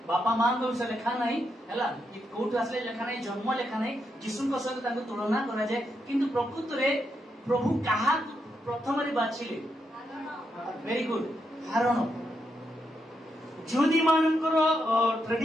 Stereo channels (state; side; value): normal; both; correlation 0.82